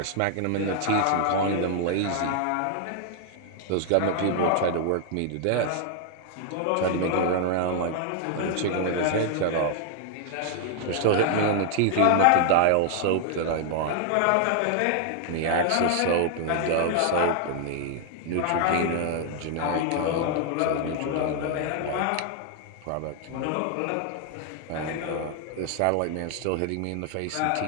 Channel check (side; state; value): both; different; correlation 0.00